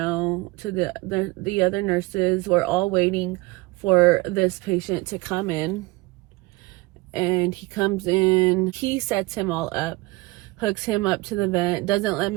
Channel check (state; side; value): quieter; left; 23.1 dB